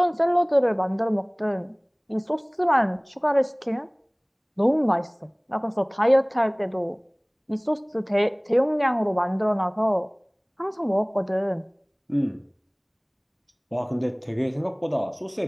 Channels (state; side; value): identical; both; correlation 1.00